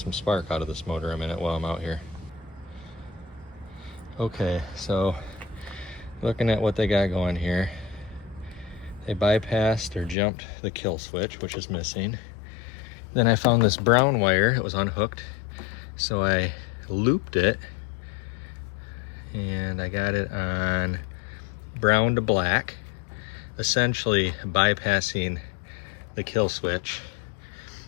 spark out of this motor a minute while I'm out here. Okay, so looking at what they got going here, they bypassed or jumped the kill switch, which is missing. Then I found this brown wire, it was unhooked, so I looped it and I got it on brown to black, essentially bypassing the kill switch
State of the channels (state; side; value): drops out; right; at 10.2 s